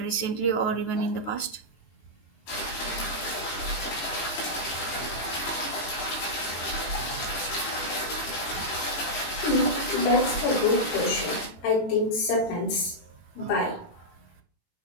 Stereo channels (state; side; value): late; right; 18 ms